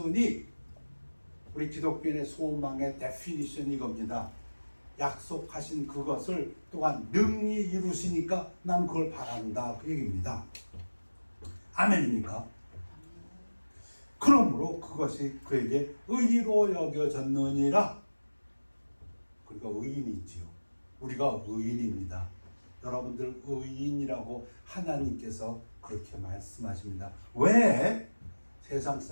우리 기독교인의 소망의 데피니션이 이겁니다. 약속하신 그것을 또한 능히 이루시니까 난 그걸 바란다 그 얘기입니다. 아멘입니까? 그러므로 그것이 그에게 의로 여겨졌느니라. 그러니까 의인이지요. 우리가 의인입니다. 여러분들 의인이라고 하나님께서 그렇게 말씀하십니다. 왜? 세상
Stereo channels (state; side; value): inverted; both; correlation -1.00